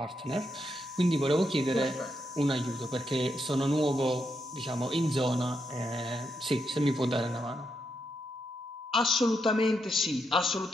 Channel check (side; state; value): both; normal; correlation 0.81